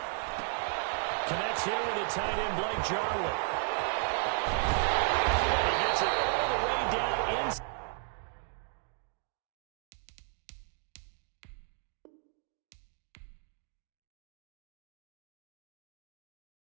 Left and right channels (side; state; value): left; silent; 55 dB below the other